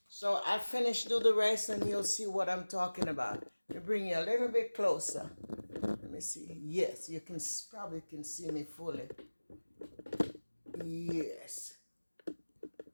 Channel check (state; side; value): inverted; both; correlation -1.00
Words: So I'll finish, do the rest, and you'll see what I'm talking about. Let me bring you a little bit closer. Let me see. Yes, you can probably can see me fully. Yes.